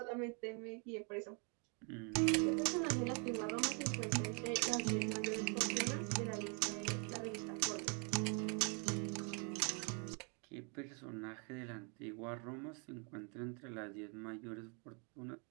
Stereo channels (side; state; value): left; quieter; 37.1 dB